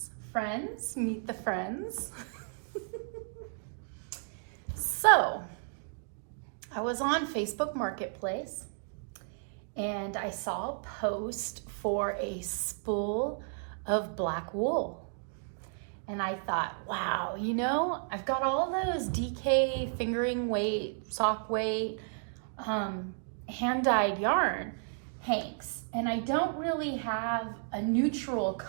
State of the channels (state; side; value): silent; left; digital silence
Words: Friends, meet the friends. So, I was on Facebook Marketplace and I saw a post for a spool of black wool. And I thought, wow, I've got all those DK fingering weight, sock weight, hand-dyed yarn hanks. And I don't really have a neutral